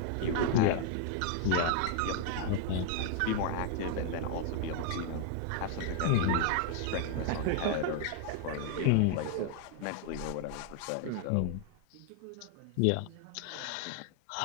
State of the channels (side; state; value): both; different; correlation 0.00